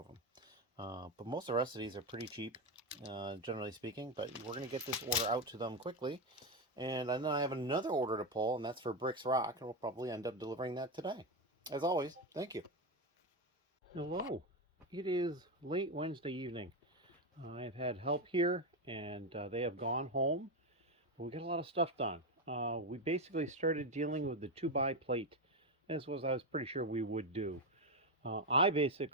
them. But most of the rest of these are pretty cheap, generally speaking. But we're going to get this order out to them quickly. And then I have another order to pull, and that's for ROC, and we'll probably end up delivering that today. As always, thank you. Hello. It is late Wednesday evening. I've had help here, and they have gone home. But we got a lot of stuff done. We basically started dealing with the 2x plate, as was I was pretty sure we would do. I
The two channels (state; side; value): normal; both; correlation 0.11